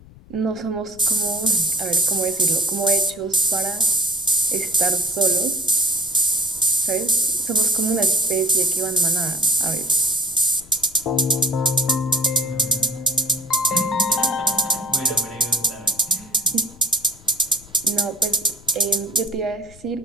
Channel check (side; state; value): left; noise; rumble, 22 dB below the sound